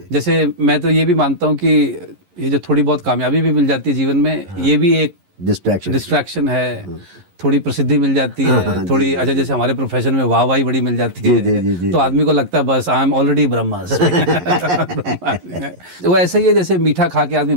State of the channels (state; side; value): late; left; 11 ms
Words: जैसे मैं तो ये भी मानता हूँ कि ये जो थोड़ी बहुत कामयाबी भी मिल जाती है जीवन में, ये भी एक डिस्ट्रैक्शन है। थोड़ी प्रसिद्धि मिल जाती है, थोड़ी अच्छा, जैसे हमारे प्रोफेशन में वाहवाही बड़ी मिल जाती है, तो आदमी को लगता है बस आई एम ऑलरेडी ब्रह्मास्मि। वो ऐसे ही है जैसे मीठा खा के आदमी